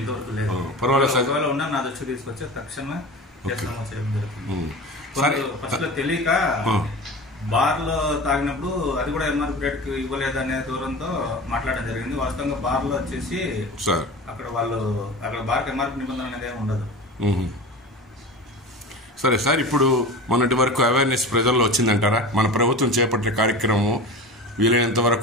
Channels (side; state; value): both; normal; correlation 0.32